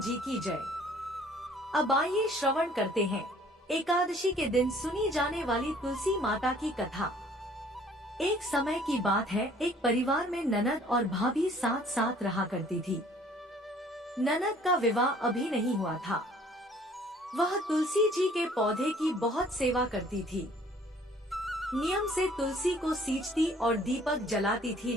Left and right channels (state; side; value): normal; both; correlation 0.56